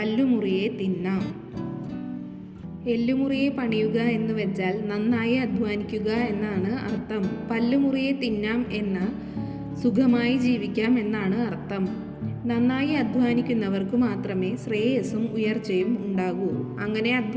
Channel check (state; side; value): identical; both; correlation 1.00